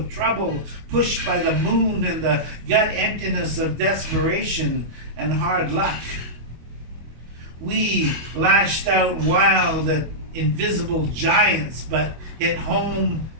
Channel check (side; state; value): left; late; 25 ms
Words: trouble, pushed by the moon and the gut emptiness of desperation and hard luck. We lashed out wild at invisible giants, but hit home,